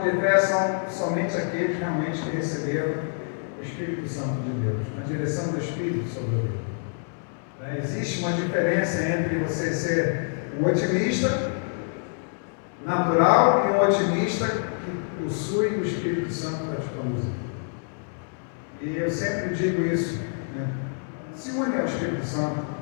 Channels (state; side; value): silent; right; 59 dB below the other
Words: fé são somente aqueles realmente que receberam o Espírito Santo de Deus, a direção do Espírito sobre a vida. Existe uma diferença entre você ser um otimista natural e um otimista que possui o Espírito Santo para te conduzir. E eu sempre digo isso, se une ao Espírito Santo.